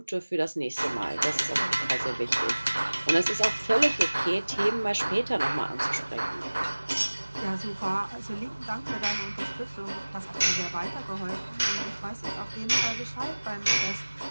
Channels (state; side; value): inverted; both; correlation -1.00